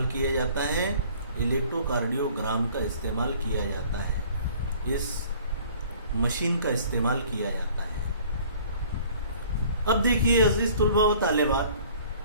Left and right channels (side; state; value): both; inverted; correlation -0.53